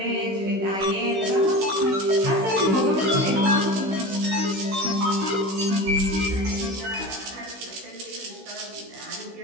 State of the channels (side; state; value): left; late; 16 ms